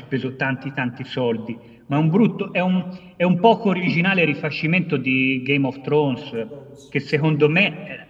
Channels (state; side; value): identical; both; correlation 1.00